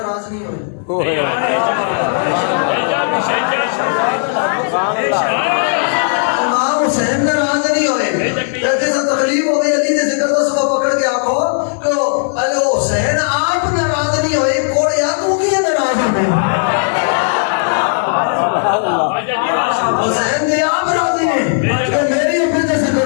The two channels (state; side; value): silent; right; 66 dB below the other